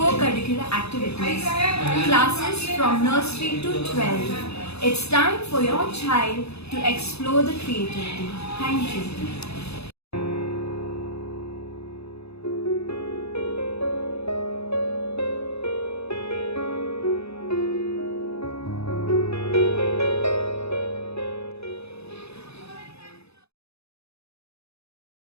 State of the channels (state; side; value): late; right; 0.79 ms